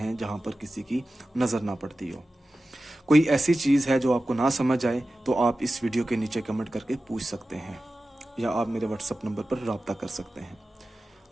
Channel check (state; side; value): normal; both; correlation 0.94